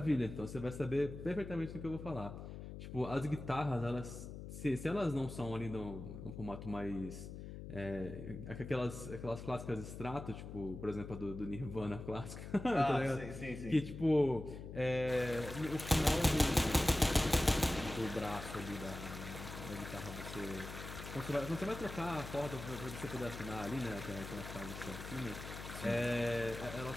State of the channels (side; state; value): left; noise; hum, 9 dB below the sound